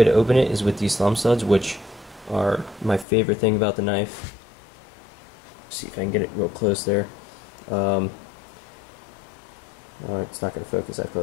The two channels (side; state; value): right; drops out; at 3.1 s